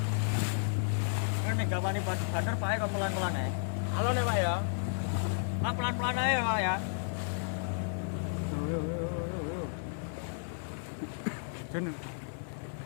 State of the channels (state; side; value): silent; right; digital silence